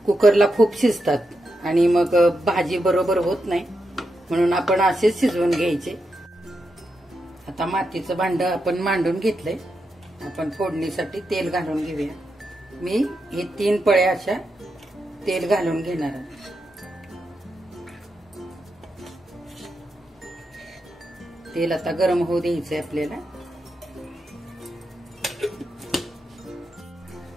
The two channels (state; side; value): normal; both; correlation 0.85